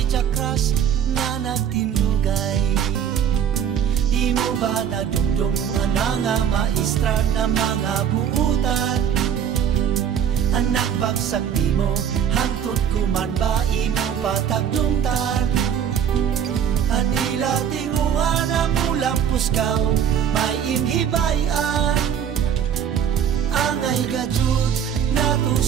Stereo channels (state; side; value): quieter; left; 8.6 dB